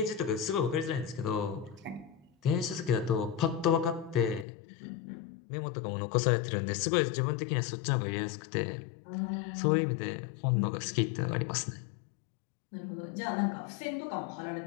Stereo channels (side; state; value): right; drops out; at 4.5 s